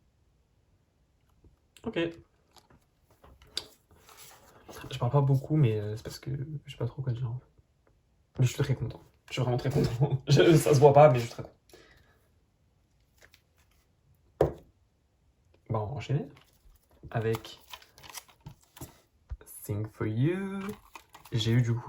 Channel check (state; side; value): identical; both; correlation 1.00